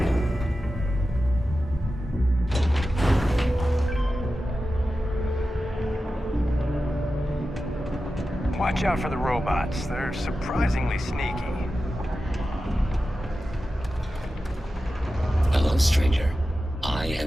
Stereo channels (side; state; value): both; normal; correlation 0.93